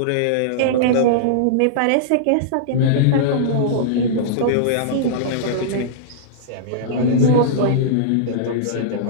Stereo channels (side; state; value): both; different; correlation -0.02